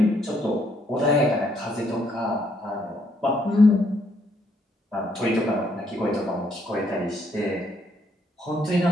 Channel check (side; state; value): both; normal; correlation 0.71